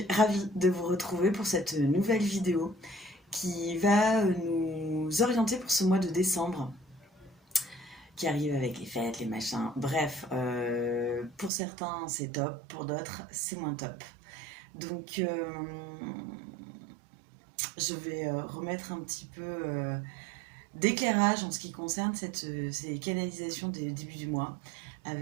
ravie de vous retrouver pour cette nouvelle vidéo qui va nous orienter pour ce mois de décembre qui arrive avec les fêtes, les machins. Bref, pour certains c'est top, pour d'autres c'est moins top. Donc je vais remettre un petit peu d'éclairage en ce qui concerne ces canalisations des débuts du mois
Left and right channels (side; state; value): left; drops out; at 11.5 s